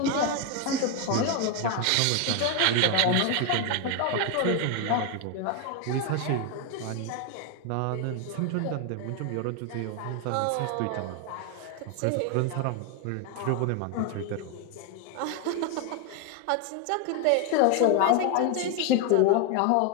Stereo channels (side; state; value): both; different; correlation 0.01